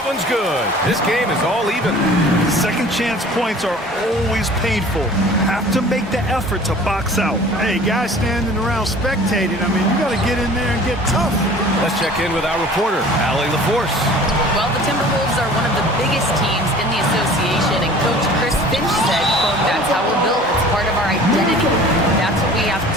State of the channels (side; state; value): both; normal; correlation 0.46